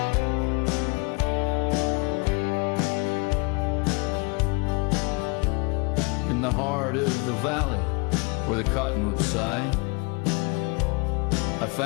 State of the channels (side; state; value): right; quieter; 29.5 dB